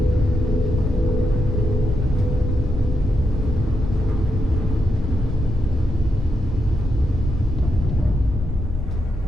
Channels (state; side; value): normal; both; correlation 0.83